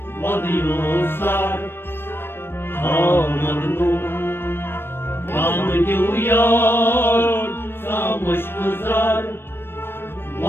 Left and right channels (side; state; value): right; late; 0.11 ms